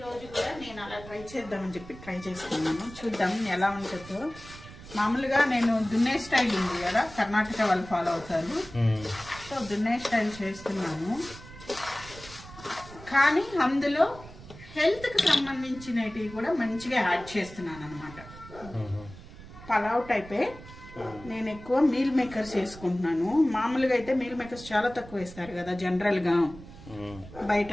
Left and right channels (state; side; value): noise; right; rumble, 17 dB below the sound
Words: కూడా నేను అలా ట్రై చేద్దామని చెప్పి ట్రై చేస్తున్నాను. చూద్దాం ఎలా ఉంటుందో. మామూలుగా నేను దున్నే స్టైల్ ఉంది కదా, కర్ణాటక వాళ్ళు ఫాలో అవుతారు. సో దున్నే స్టైల్ చేస్తున్నాను, కానీ అందులో హెల్త్కి సంబంధించినవి కూడా మంచిగా యాడ్ చేస్తున్నాను అనమాట. పలావ్ టైపే. నేను ఎక్కువ మీల్ మేకర్స్ వేసుకుంటున్నాను. మామూలుగా అయితే మీల్ మేకర్స్ చాలా తక్కువ వేస్తారు కదా జనరల్గా, బయట